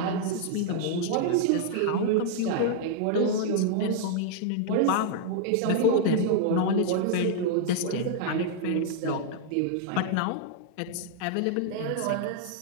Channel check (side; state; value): both; different; correlation -0.01